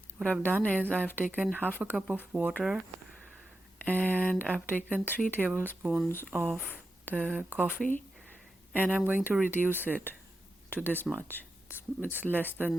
What I've done is I've taken half a cup of water and I've taken 3 tablespoons of the coffee, and I'm going to reduce it to this much. It's less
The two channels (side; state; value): both; normal; correlation 0.89